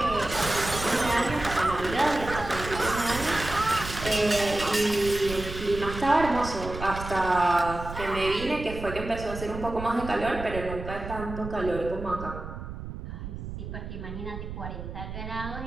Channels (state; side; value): noise; right; rumble, 9 dB below the sound